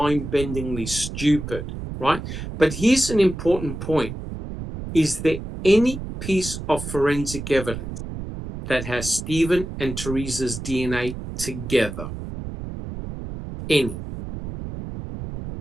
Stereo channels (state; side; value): noise; right; rumble, 8 dB below the sound